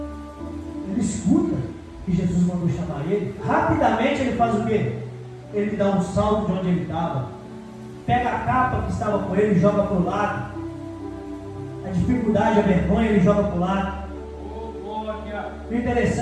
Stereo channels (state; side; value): identical; both; correlation 1.00